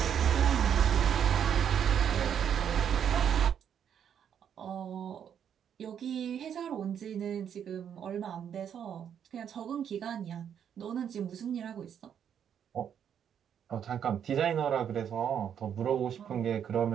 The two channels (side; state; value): left; quieter; 8.6 dB